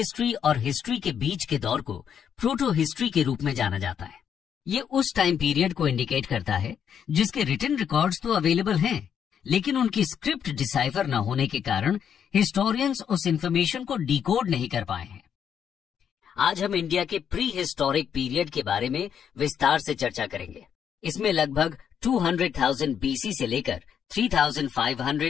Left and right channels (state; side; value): quieter; right; 8.3 dB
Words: और हिस्ट्री के बीच के दौर को प्रोटो हिस्ट्री के रूप में जाना जाता है। ये उस टाइम पीरियड को इंडिकेट करता है जिसके रिटन रिकॉर्ड्स तो अवेलेबल हैं, लेकिन उनकी स्क्रिप्ट डिसाइफर न होने के कारण हिस्टोरियंस उस इंफॉर्मेशन को डिकोड नहीं कर पाए हैं। आज हम इंडिया के प्री हिस्टोरिक पीरियड के बारे में विस्तार से चर्चा करेंगे। इसमें लगभग 200,000 बीसी से लेकर